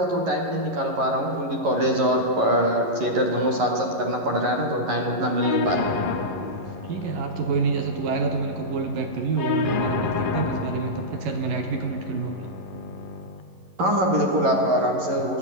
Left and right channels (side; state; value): left; late; 11 ms